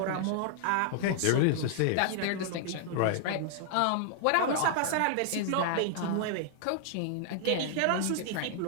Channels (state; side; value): different; both; correlation 0.00